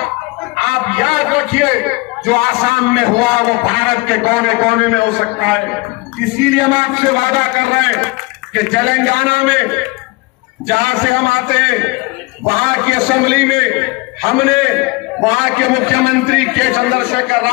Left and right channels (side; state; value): right; quieter; 24.9 dB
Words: आप याद रखिए जो आसाम में हुआ वो भारत के कोने कोने में हो सकता है। इसीलिए हम आपसे वादा कर रहे हैं कि तेलंगाना में जहां से हम आते हैं वहां की असेंबली में हमने वहां के मुख्यमंत्री के चंद्रशेखर